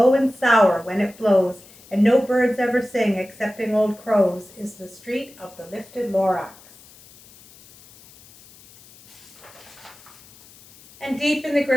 and sour when it blows and no birds ever sing excepting old crows is the street of the lifted Lorax. And deep in the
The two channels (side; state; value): left; noise; hiss, 24 dB below the sound